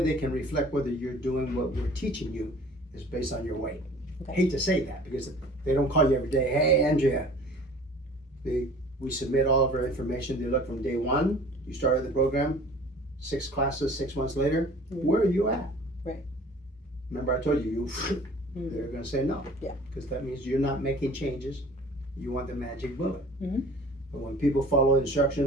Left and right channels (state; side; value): normal; both; correlation 0.47